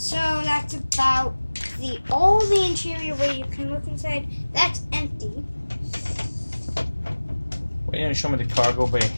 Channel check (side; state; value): both; inverted; correlation -1.00